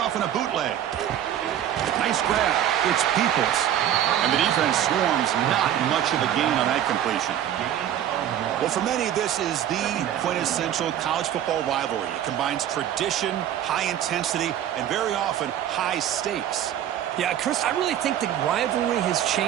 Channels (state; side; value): quieter; left; 10.9 dB